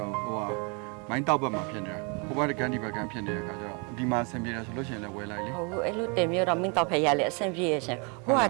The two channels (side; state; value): left; quieter; 33.8 dB